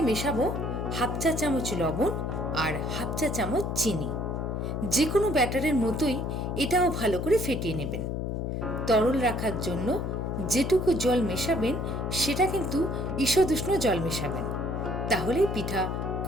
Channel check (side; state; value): left; noise; hum, 2 dB below the sound